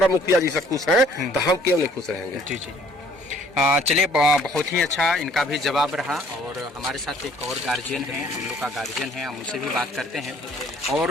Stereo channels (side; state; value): both; normal; correlation 0.58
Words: मुखिया जी से खुश है, तो हम क्यों नहीं खुश रहेंगे? जी जी। चलिए, बहुत ही अच्छा इनका भी जवाब रहा। और हमारे साथ एक और गार्जियन है, हम लोग का गार्जियन है, हम उनसे भी बात करते हैं। और